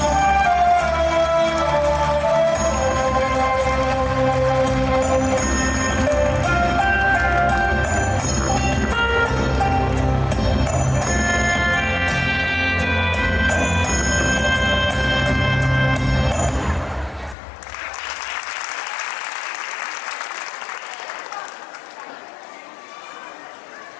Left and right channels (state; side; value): drops out; right; at 17.4 s